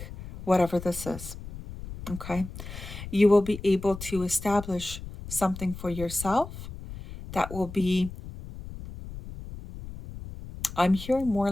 whatever this is. Okay? You will be able to establish something for yourself that will be, I'm hearing more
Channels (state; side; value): noise; left; rumble, 12 dB below the sound